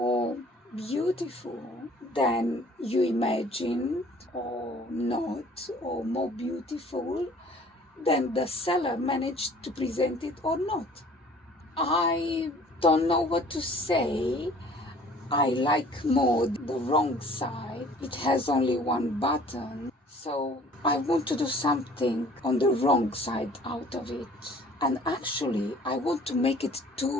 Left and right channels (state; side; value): normal; both; correlation 0.52